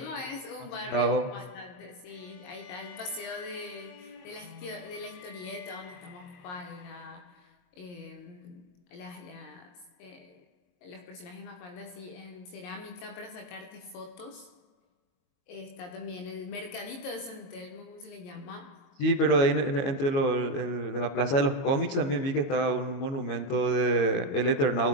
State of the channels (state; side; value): late; right; 22 ms